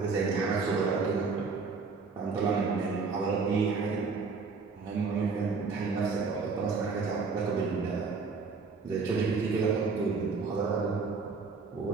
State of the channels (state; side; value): quieter; left; 4.7 dB